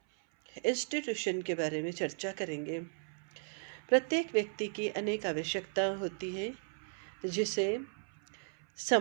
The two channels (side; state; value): left; silent; 54 dB below the other